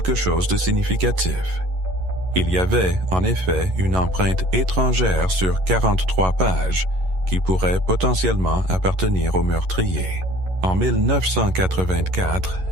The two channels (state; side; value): late; left; 11 ms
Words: chose de significatif. Il y avait, en effet, une empreinte étrangère sur 43 pages qui pourrait potentiellement appartenir au meurtrier. En 1984,